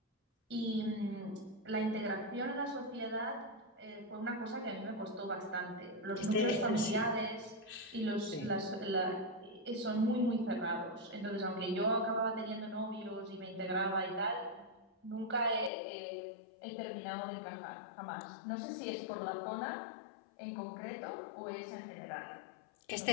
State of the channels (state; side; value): drops out; right; at 15.7 s